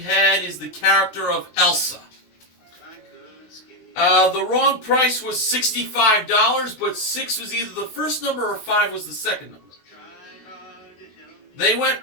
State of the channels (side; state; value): right; late; 18 ms